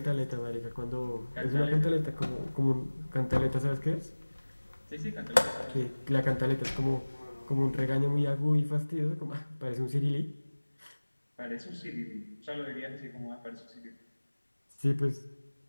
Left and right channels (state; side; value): inverted; both; correlation -1.00